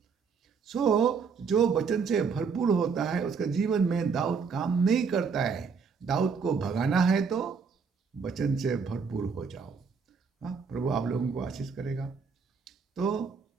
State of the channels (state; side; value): quieter; left; 5.6 dB